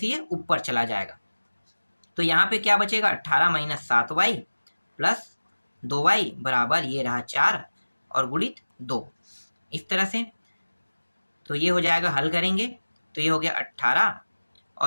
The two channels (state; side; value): inverted; both; correlation -1.00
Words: ये ऊपर चला जाएगा। तो यहाँ पे क्या बचेगा, 18 - 7y + 2y = ये रहा 4, और गुणित 2, इस तरह से। तो ये हो जाएगा, हल करेंगे तो ये हो गया 18,